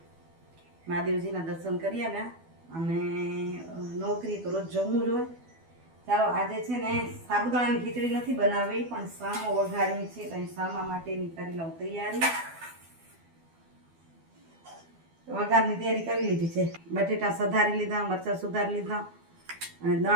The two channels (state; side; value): late; left; 12 ms